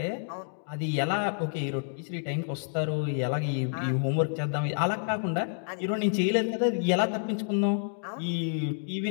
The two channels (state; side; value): silent; right; digital silence